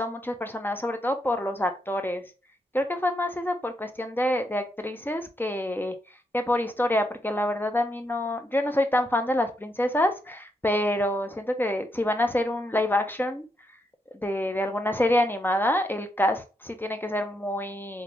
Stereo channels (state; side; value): normal; both; correlation 0.80